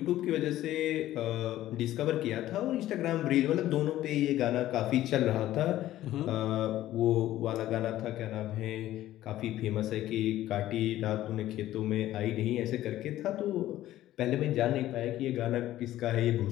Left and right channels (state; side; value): quieter; right; 14.1 dB